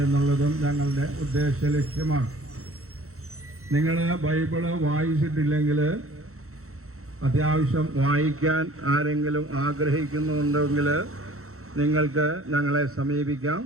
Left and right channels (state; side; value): late; left; 0.63 ms